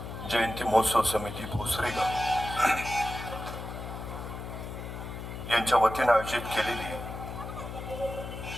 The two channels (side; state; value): left; noise; hum, 8 dB below the sound